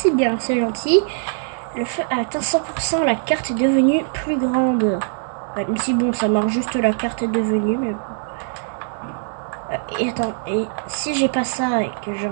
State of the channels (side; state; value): left; silent; digital silence